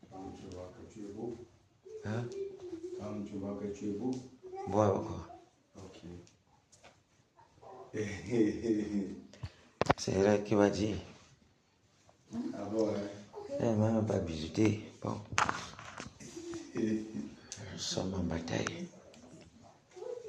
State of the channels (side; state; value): both; identical; correlation 1.00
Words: Quand tu vois que tu es beau. Hein? Quand tu vois que tu es beau. Bois encore. Ok. C'est elle qui va dire. Ah bon, hein? Elle m'a même pas visité. Bon. Nous sommes en bataille.